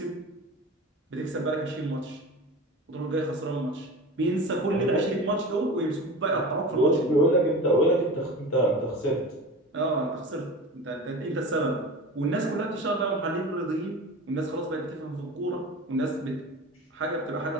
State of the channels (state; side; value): normal; both; correlation 0.33